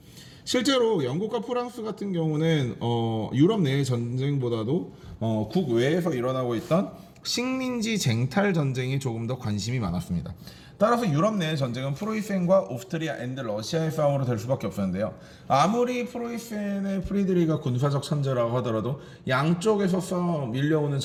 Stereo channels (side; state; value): both; identical; correlation 1.00